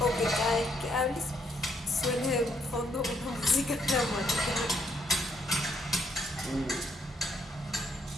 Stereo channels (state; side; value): normal; both; correlation 0.72